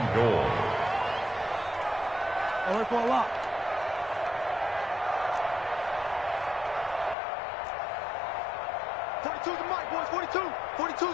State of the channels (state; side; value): drops out; right; at 7.2 s